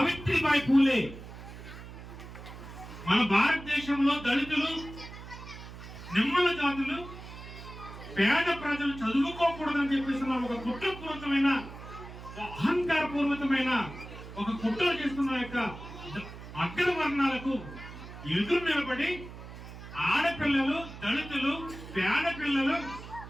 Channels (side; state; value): right; noise; hum, 13 dB below the sound